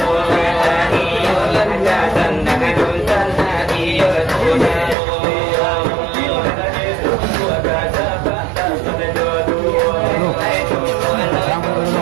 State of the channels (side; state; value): left; drops out; at 5.0 s